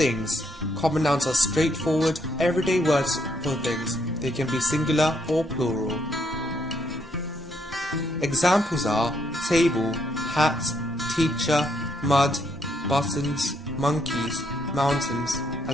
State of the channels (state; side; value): normal; both; correlation 0.74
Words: Common nouns are straightforward, everyday words for things. They can be singular or plural. Examples are table, hat, teacher, mud, buttons, monkeys, mountains,